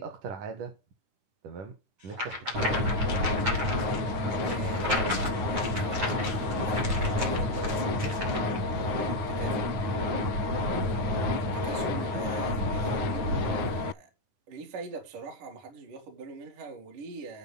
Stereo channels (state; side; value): late; left; 9.4 ms